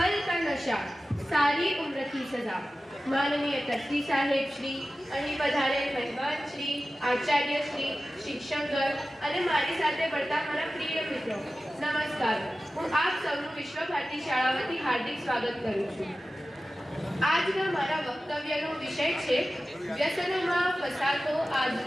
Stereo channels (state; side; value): normal; both; correlation 0.95